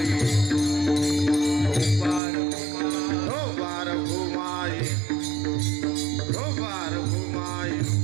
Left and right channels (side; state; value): left; drops out; at 2.2 s